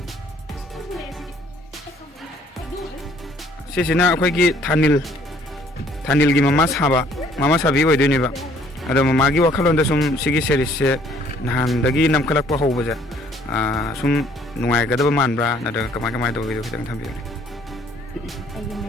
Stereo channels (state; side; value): normal; both; correlation 0.60